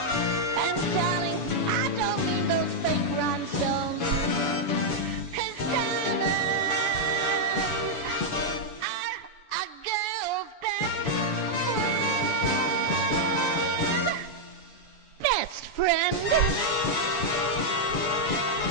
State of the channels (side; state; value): right; late; 7.0 ms